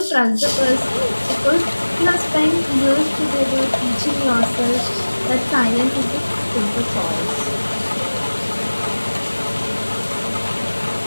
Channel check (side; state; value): both; inverted; correlation -1.00